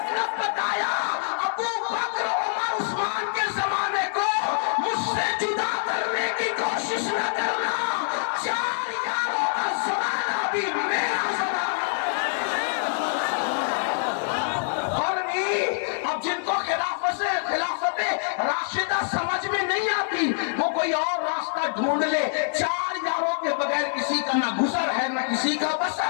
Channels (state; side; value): silent; right; 59 dB below the other